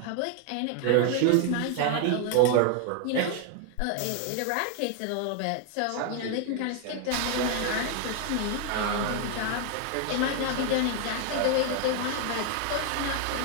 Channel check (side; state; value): both; different; correlation 0.00